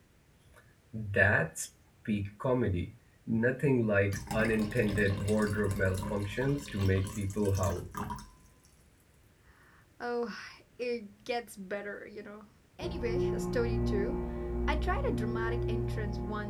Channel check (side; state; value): both; identical; correlation 1.00